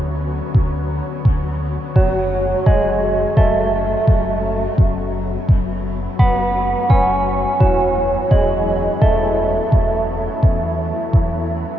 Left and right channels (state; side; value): normal; both; correlation 0.83